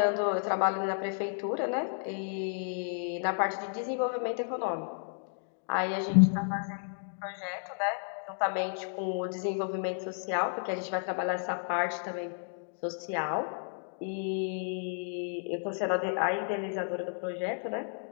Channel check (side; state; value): right; silent; digital silence